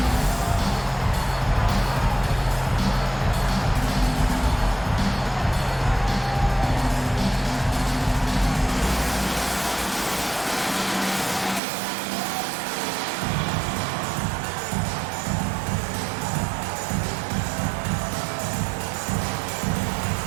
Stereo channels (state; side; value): drops out; left; at 11.6 s